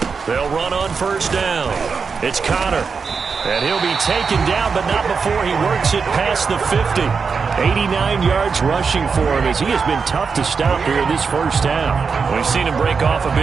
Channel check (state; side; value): quieter; left; 5.4 dB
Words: They'll run on 1st down. It's Connor. And he'll be taken down, but not before he works it past the 50. 89 yards rushing for him as he has been tough to stop here this first half. We've seen him break off a